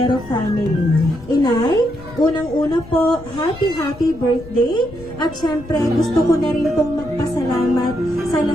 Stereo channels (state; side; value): noise; left; rumble, 17 dB below the sound